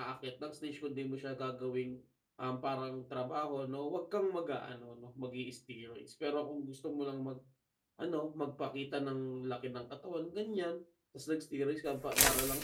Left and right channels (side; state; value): both; identical; correlation 1.00